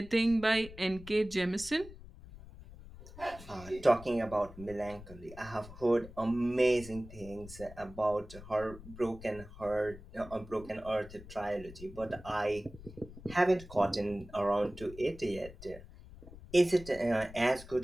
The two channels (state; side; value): noise; left; rumble, 17 dB below the sound